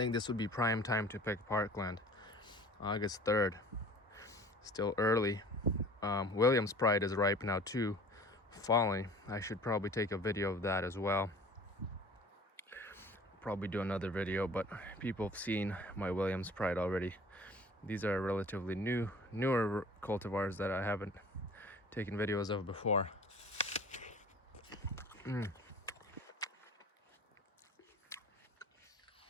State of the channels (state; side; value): normal; both; correlation 0.45